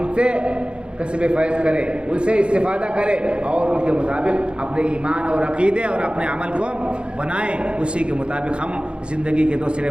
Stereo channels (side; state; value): left; late; 0.056 ms